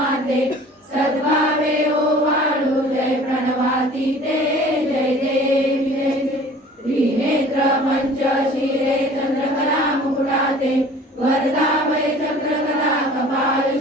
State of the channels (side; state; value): both; normal; correlation 0.47